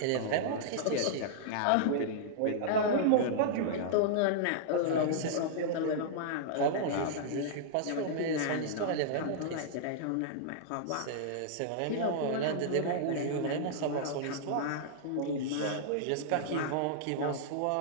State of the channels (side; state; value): both; different; correlation -0.02